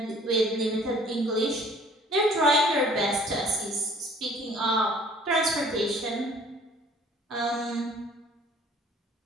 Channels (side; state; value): both; normal; correlation 0.53